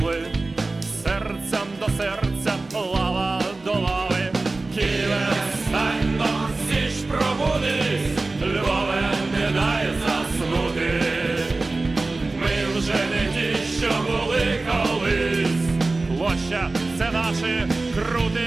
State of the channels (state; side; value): quieter; left; 3.3 dB